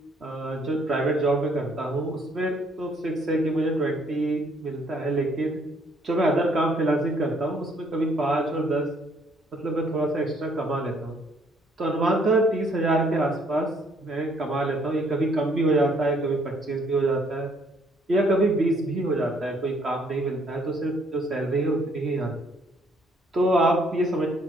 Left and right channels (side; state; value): both; normal; correlation 0.65